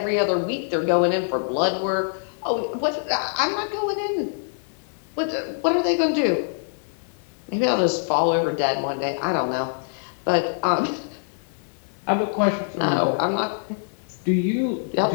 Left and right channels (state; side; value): silent; right; digital silence